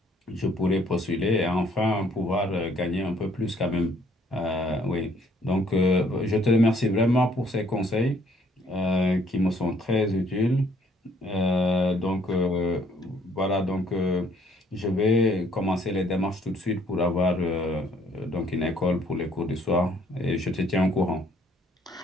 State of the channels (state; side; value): normal; both; correlation 0.63